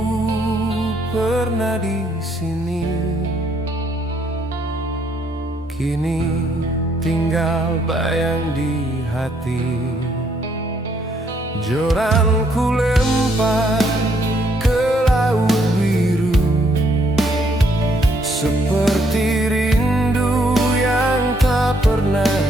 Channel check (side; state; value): both; normal; correlation 0.70